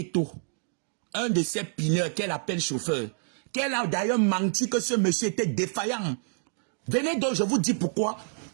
Un de ces pineurs qu'elle appelle chauffeur. Qu'elle a d'ailleurs menti que ce monsieur était défaillant. Venez donc, je vous dis pourquoi.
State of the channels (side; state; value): left; silent; digital silence